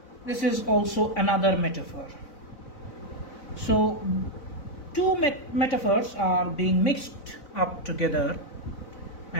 this is also another metaphor. So, two metaphors are being mixed up together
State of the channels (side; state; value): right; late; 4.0 ms